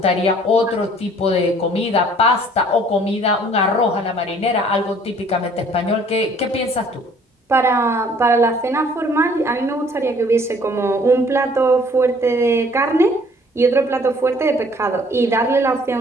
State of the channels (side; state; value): both; normal; correlation 0.56